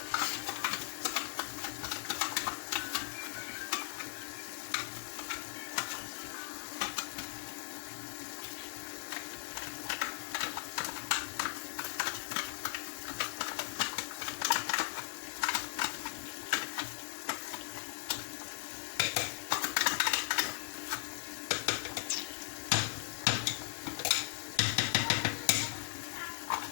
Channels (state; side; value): silent; right; digital silence